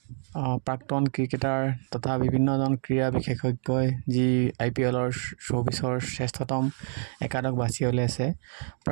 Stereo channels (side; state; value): left; silent; 60 dB below the other